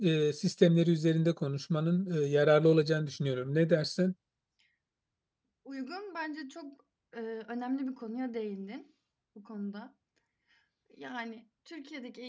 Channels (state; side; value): identical; both; correlation 1.00